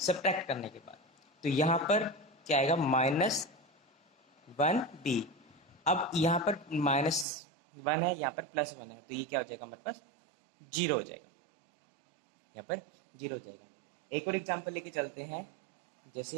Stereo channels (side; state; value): left; drops out; at 7.2 s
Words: करने के बाद। तो यहाँ पर क्या आएगा, -1b। अब यहाँ पर -1 है, यहाँ पर +1 है, तो ये क्या हो जाएगा हमारे पास, 0 हो जाएगा। यहाँ पर 0 हो जाएगा। एक और एग्जांपल लेके चलते हैं।